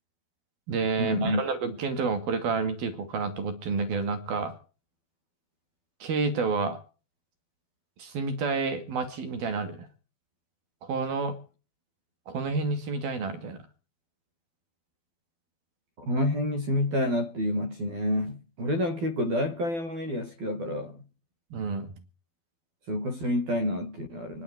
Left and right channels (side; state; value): left; late; 12 ms